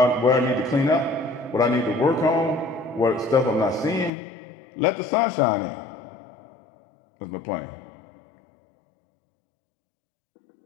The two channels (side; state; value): right; drops out; at 4.1 s